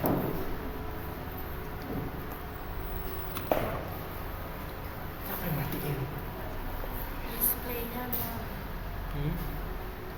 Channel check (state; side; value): identical; both; correlation 1.00